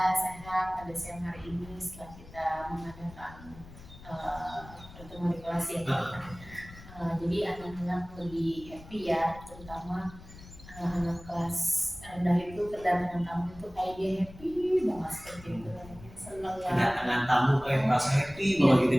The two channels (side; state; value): left; noise; rumble, 18 dB below the sound